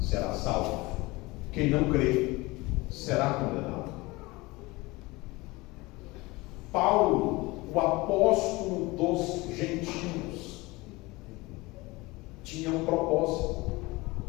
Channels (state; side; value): quieter; right; 22.4 dB